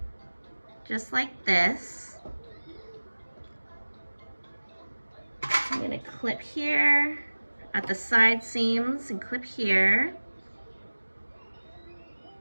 Just like this. I'm gonna clip here at the side seams and clip here.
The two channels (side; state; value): both; inverted; correlation -1.00